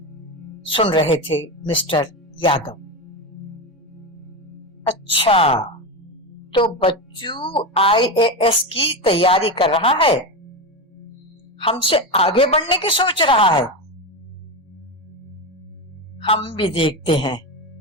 सुन रहे थे मिस्टर यादव। अच्छा, तो बच्चू IAS की तैयारी कर रहा है, हमसे आगे बढ़ने की सोच रहा है। हम भी देखते हैं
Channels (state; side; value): normal; both; correlation 0.17